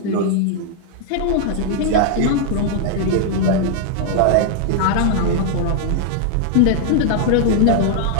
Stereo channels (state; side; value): different; both; correlation 0.00